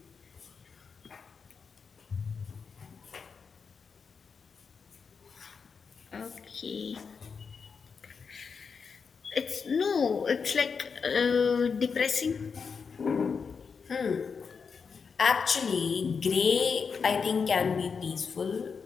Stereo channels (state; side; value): quieter; right; 5.7 dB